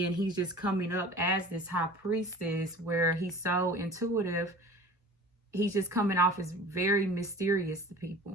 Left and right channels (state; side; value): normal; both; correlation 0.41